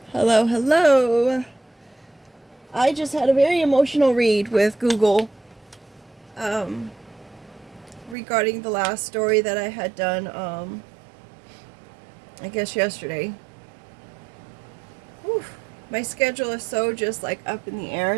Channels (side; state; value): left; drops out; at 8.2 s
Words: Hello, hello. I just had a very emotional read with Google um, regarding the last story that I had done, I guess yesterday. Whew. My schedule is so just like up in the